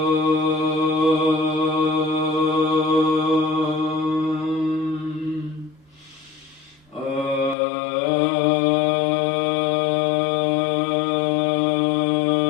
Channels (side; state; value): right; drops out; at 7.6 s